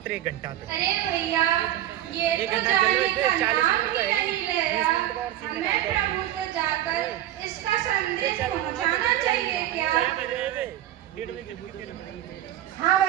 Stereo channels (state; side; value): quieter; left; 13.0 dB